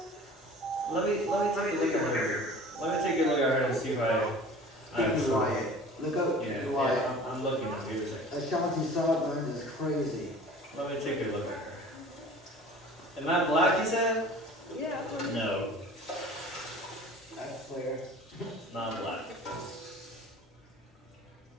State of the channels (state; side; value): normal; both; correlation 0.43